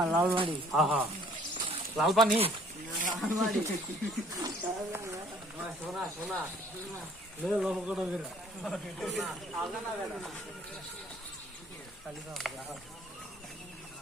লালবাড়ি লাল পানি সোনা সোনা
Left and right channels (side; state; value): both; normal; correlation 0.57